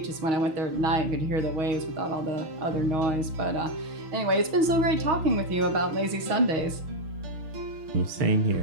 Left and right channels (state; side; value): late; left; 6.4 ms